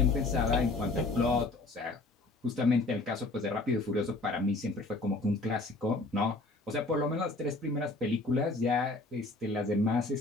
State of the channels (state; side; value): quieter; right; 3.1 dB